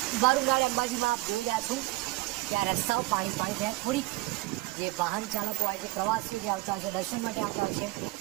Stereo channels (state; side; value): quieter; left; 20.5 dB